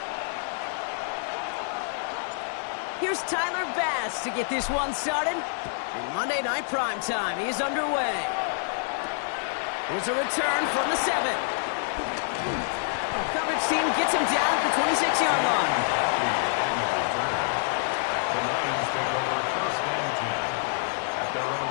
Here's Tyler Bass to get this one started. And Monday Night Primetime is underway. Here's a return from the 7. Coverage team gets him down at the 26-yard line. The Lions take over first and 10 at their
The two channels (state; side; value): silent; right; digital silence